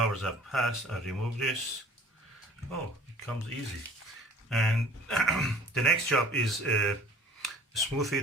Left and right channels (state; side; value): normal; both; correlation 0.50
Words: have passed. I remove this. Oh, it comes easy. And the next job is smooth